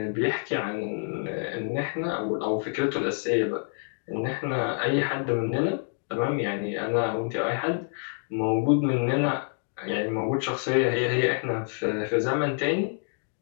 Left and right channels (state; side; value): silent; right; 60 dB below the other